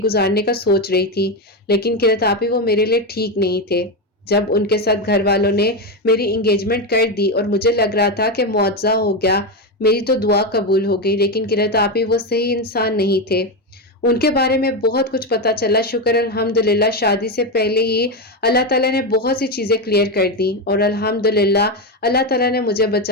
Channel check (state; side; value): normal; both; correlation 0.11